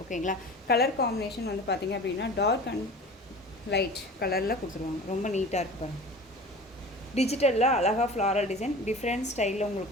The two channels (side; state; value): both; normal; correlation 0.38